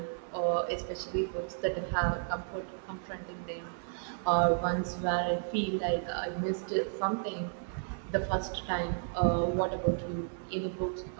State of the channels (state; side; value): silent; left; digital silence